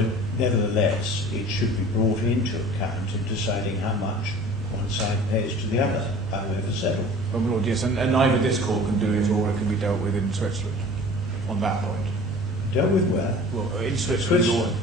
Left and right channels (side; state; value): both; normal; correlation 0.44